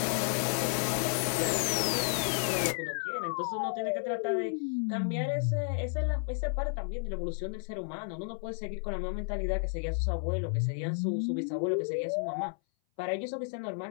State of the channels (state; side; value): silent; right; 56 dB below the other